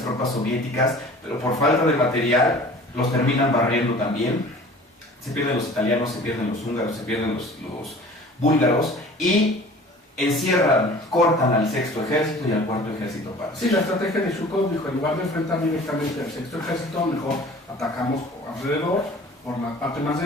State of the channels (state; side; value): normal; both; correlation 0.45